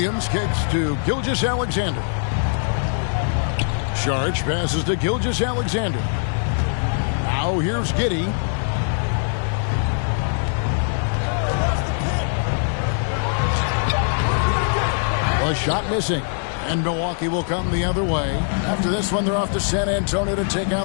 kicks to Gilgeous-Alexander. Sharch passes to Gilgeous-Alexander. Now here's Giddey. A shot missing. And Milwaukee will come the other way. After this one, they're off to San Antonio to take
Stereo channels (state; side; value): silent; right; digital silence